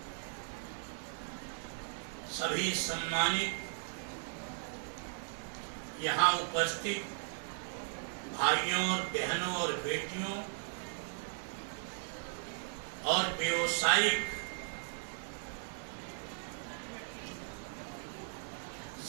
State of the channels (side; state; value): left; silent; 53 dB below the other